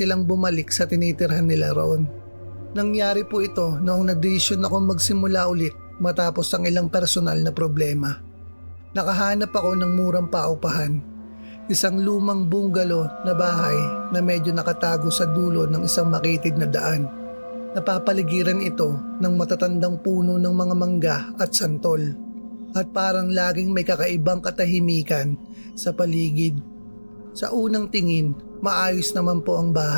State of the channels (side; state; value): both; inverted; correlation -1.00